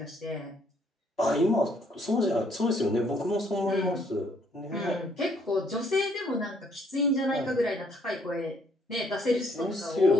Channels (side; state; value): both; normal; correlation 0.66